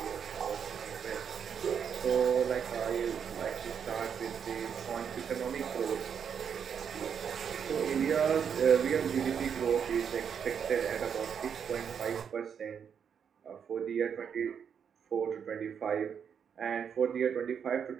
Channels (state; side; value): quieter; left; 7.5 dB